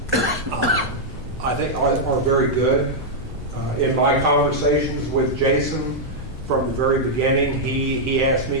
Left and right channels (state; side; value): normal; both; correlation -0.05